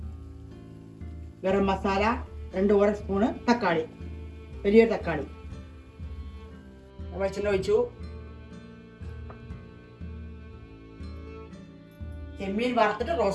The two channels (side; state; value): both; identical; correlation 1.00